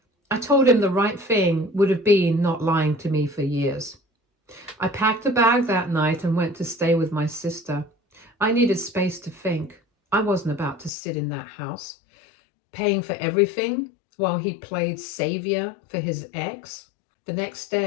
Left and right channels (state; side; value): drops out; right; at 10.9 s